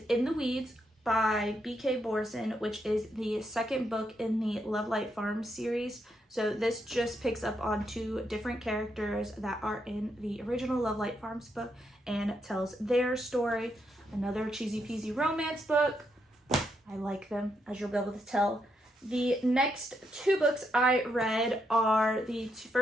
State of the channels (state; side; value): normal; both; correlation 0.79